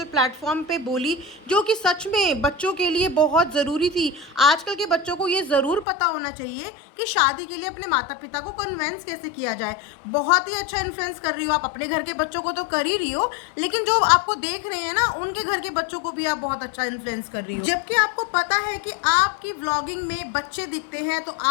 प्लेटफॉर्म पे बोली जो कि सच में बच्चों के लिए बहुत ज़रूरी थी। आजकल के बच्चों को ये ज़रूर पता होना चाहिए कि शादी के लिए अपने माता पिता को कन्विंस कैसे किया जाए। बहुत ही अच्छा इन्फ्लुएंस कर रही हो आप, अपने घर के बच्चों को तो कर ही रही हो, लेकिन जो आपको देख रहे हैं ना उनके घर के बच्चों को भी आप बहुत अच्छा इन्फ्लुएंस कर रही हो। जबकि आपको पता है कि आपकी व्लॉगिंग में बच्चे दिखते हैं, तो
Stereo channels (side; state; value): right; drops out; at 5.9 s